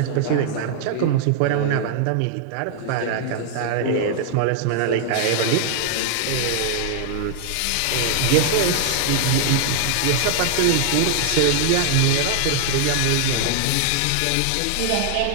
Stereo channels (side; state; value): both; different; correlation 0.00